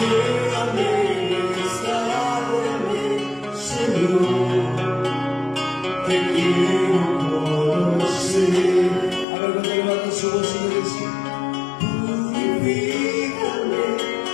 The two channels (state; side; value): drops out; right; at 9.2 s